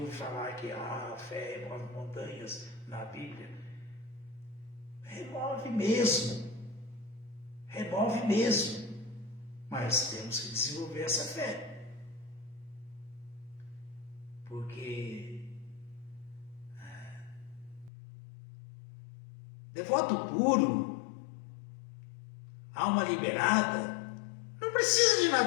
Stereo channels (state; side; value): drops out; right; at 17.9 s